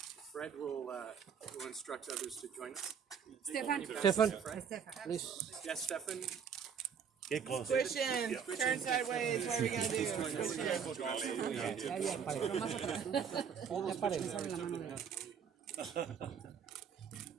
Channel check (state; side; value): quieter; left; 7.1 dB